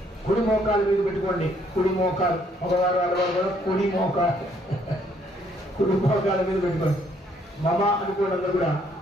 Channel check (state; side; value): normal; both; correlation 0.67